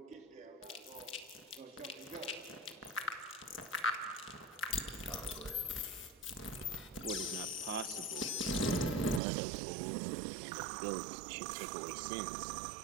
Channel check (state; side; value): drops out; left; at 9.2 s